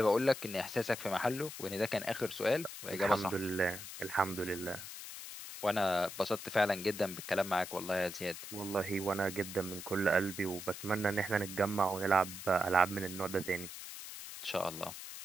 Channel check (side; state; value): left; noise; hiss, 10 dB below the sound